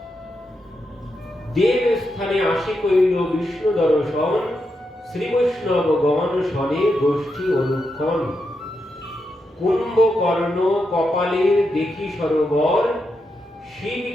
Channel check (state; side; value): normal; both; correlation 0.85